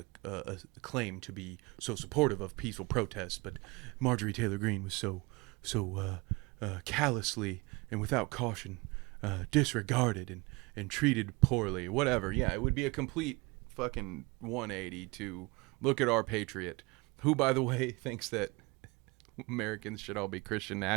claim to be so supportive of peaceful protest. But Marjorie Taylor Greene was so callously and without caution disregarded and treated poorly, whatever. Yeah, it would be a complete fucking 180 to look at our patriot, who, by the way, thinks that Americans should all be Christian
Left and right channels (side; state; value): left; quieter; 25.6 dB